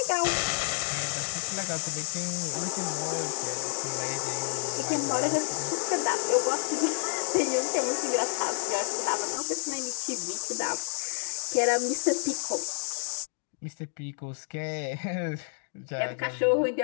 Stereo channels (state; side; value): silent; right; 58 dB below the other